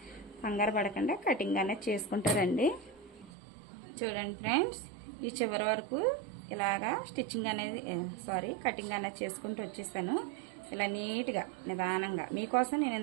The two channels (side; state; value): left; drops out; at 3.3 s